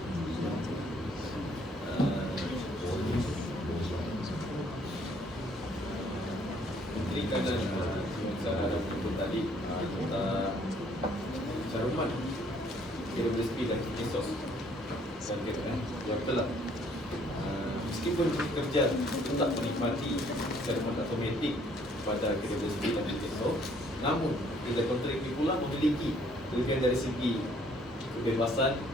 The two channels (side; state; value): both; normal; correlation 0.63